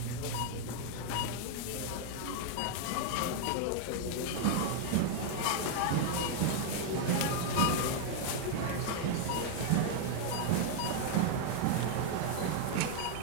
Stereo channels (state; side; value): different; both; correlation 0.00